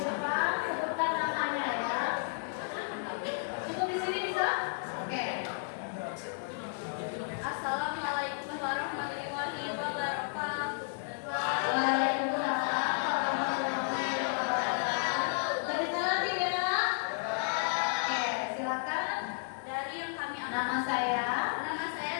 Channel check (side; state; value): right; silent; 56 dB below the other